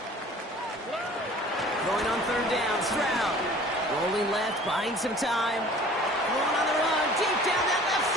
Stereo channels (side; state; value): both; normal; correlation 0.48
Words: Going on 3rd down, Stroud. Rolling left, buying some time. Throwing on the run, deep down that left